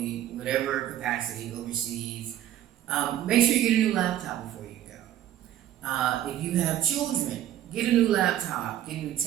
whatever capacity overseas, make sure you get a new laptop before you go. If you have children, get a new laptop, get a new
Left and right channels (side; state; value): left; quieter; 12.1 dB